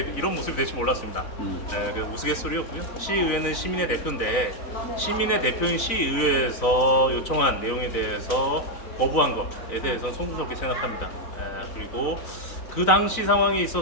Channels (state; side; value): late; right; 3.9 ms